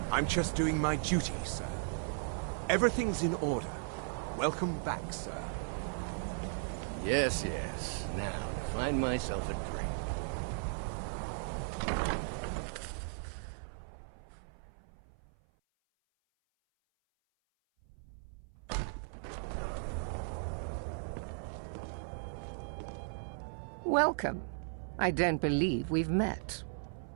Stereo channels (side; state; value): left; silent; 53 dB below the other